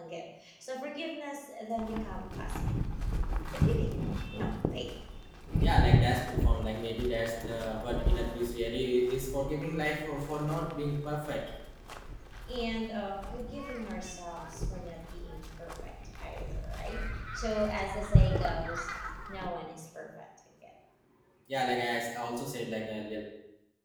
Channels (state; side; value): identical; both; correlation 1.00